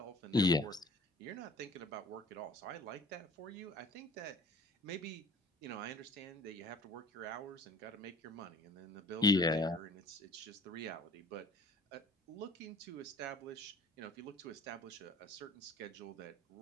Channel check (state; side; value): normal; both; correlation 0.48